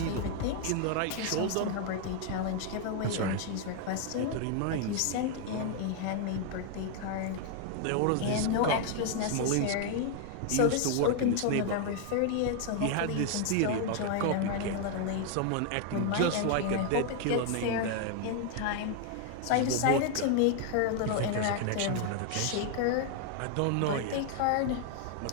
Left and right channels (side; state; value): both; different; correlation 0.00